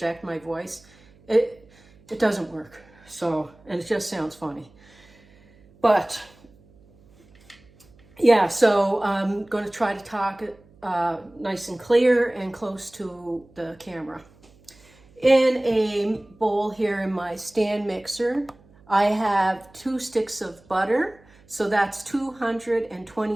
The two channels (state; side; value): noise; right; hum, 28 dB below the sound